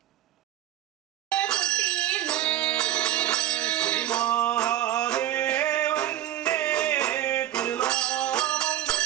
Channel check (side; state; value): left; quieter; 12.8 dB